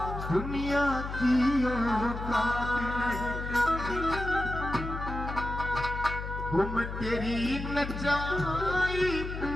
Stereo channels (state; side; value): noise; left; hum, 6 dB below the sound